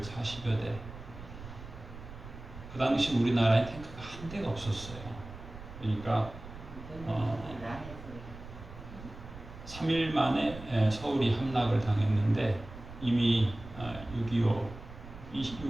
대. 그 당시 우리나라에 탱크가 한 대가 없었어요. 그러니까 3일 만에 서울이 함락을 당했는데, 이미 6.25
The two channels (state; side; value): noise; right; rumble, 14 dB below the sound